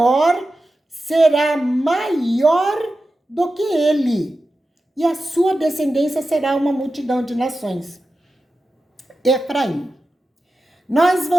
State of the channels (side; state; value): both; normal; correlation 0.93